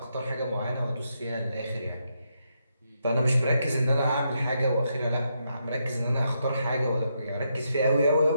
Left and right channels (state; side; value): inverted; both; correlation -0.80